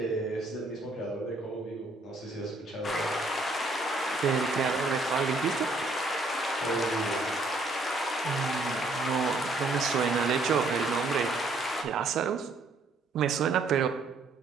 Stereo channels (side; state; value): left; quieter; 3.1 dB